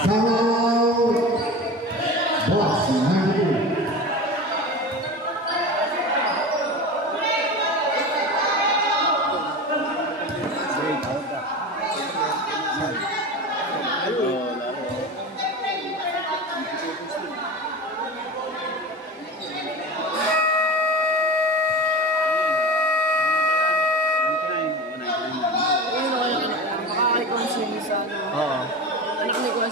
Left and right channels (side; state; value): both; normal; correlation 0.29